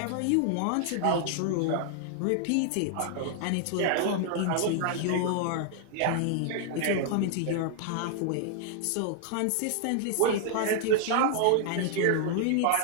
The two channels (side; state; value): both; different; correlation 0.00